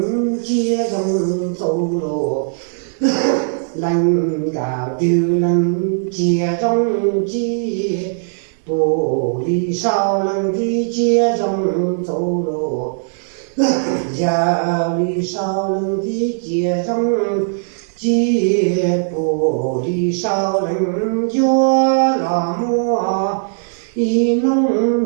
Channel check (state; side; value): silent; left; digital silence